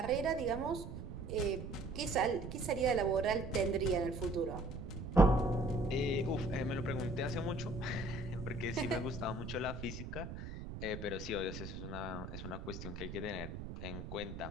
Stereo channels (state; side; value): noise; right; rumble, 8 dB below the sound